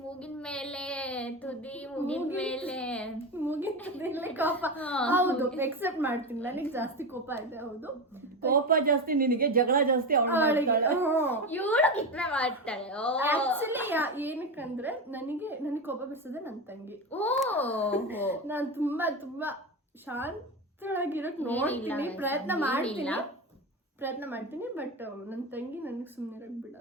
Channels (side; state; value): both; normal; correlation 0.19